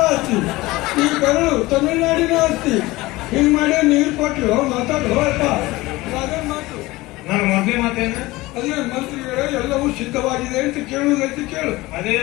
ಆಸ್ತಿ, ಈ ಕರಳು ತಮಿಳುನಾಡಿನ ಆಸ್ತಿ. ಹಿಂಗ್ ಮಾಡಿ ನೀರು ಕೊಟ್ಟು ಮಾತಾಡೋ ಅಪ್ಪ. ರಾಜನ್ ಮಾತು ನಾನು ಮೊದಲೇ ಮಾತೇನು ಅದೇ ಮಂತ್ರಿಗಳೇ ಎಲ್ಲವೂ ಸಿದ್ಧವಾಗಿದೆ ಅಂತ ಕೇಳುವುದೈತಿ ಕೇಳು. ಅದೇ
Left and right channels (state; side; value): quieter; right; 19.9 dB